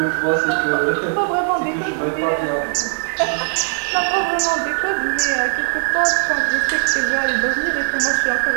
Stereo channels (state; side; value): silent; left; digital silence